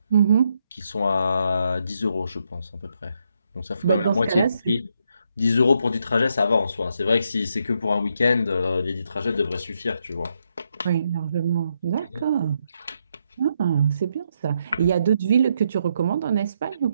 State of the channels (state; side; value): inverted; both; correlation -0.78